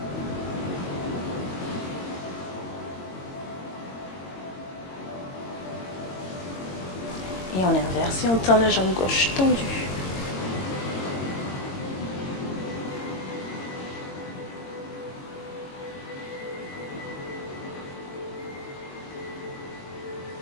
Et on inverse et on tend la jambe gauche tendue.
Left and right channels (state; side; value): late; right; 22 ms